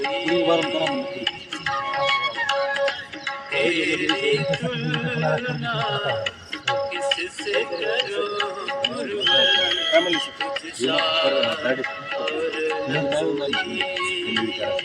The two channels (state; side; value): identical; both; correlation 1.00